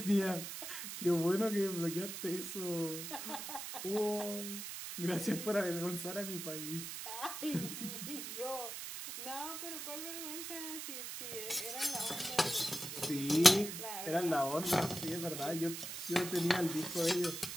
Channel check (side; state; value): right; noise; hiss, 7 dB below the sound